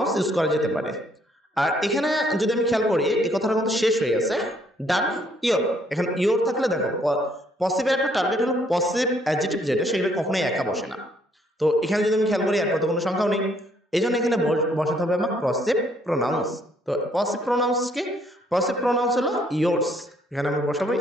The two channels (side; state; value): both; normal; correlation 0.67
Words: ইউজ করা যেতে পারে। আর এখানে যদি আমি খেয়াল করি, এই কথাটা কিন্তু শেষ হয়ে গেছে, ডান ইওর। এখানে ইওর থাকলে দেখো পসিভের একটা টার্গেট হলো পসিভ অ্যাডজেক্টিভ যেটা, সেগুলো কখনোই একা বসে না। তো এখানে যদি আমি খেয়াল করি, এরপর তো কোনো সংখ্যাও নেই, এই জন্য এখানে বসাতে হবে আমার পসিভ প্রোনাউন্স। তো পসিভ প্রোনাউন্স কি, পসিভ প্রোনাউন্স হলো ইয়োর্স, এখানে আমরা বসাবো